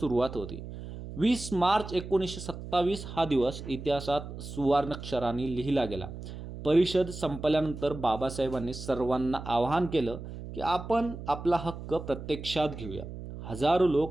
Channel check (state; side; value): noise; right; hum, 10 dB below the sound